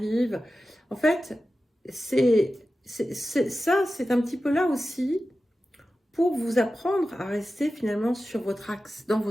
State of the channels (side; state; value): both; normal; correlation 0.94